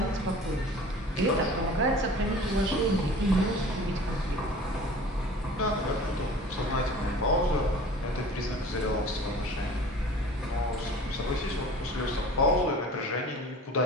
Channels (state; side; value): normal; both; correlation 0.43